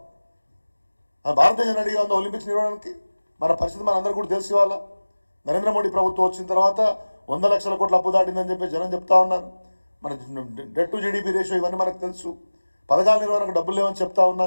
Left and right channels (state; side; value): inverted; both; correlation -1.00